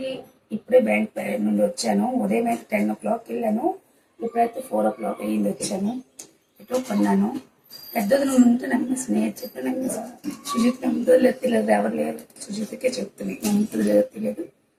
ఇప్పుడే బ్యాంక్ నుండి వచ్చాను. ఉదయం అయితే 10 o'clock వెళ్ళాను. ఇప్పుడైతే 4 o'clock అయ్యింది వచ్చాను. ఎటో కొన్నాను. పెద్దది నువ్వు ఉంటే నమ్మేసి నేను చెప్పి నమ్మేసి సుజిత్ నమ్ముతుందో లేదు తెలియదు, ఎవరు లేరు. సుజిత్కే చెప్తున్నాయి నమ్ముతుందో లేదో తెలియదు.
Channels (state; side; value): identical; both; correlation 1.00